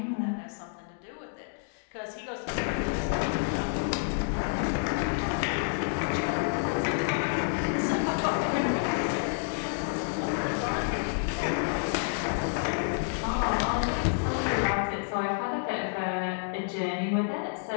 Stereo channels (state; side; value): silent; right; digital silence